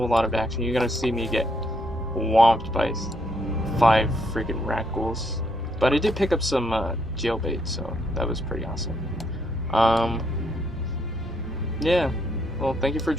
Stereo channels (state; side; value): normal; both; correlation 0.74